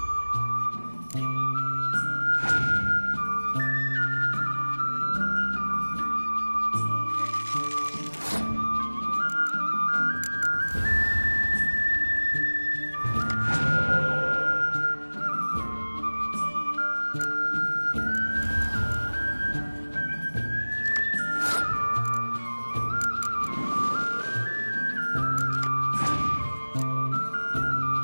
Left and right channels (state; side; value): inverted; both; correlation -1.00